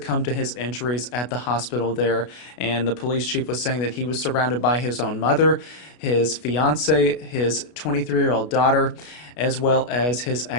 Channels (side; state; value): right; late; 33 ms